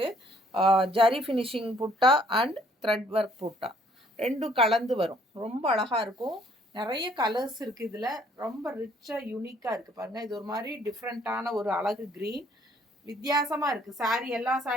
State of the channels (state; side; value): normal; both; correlation 0.62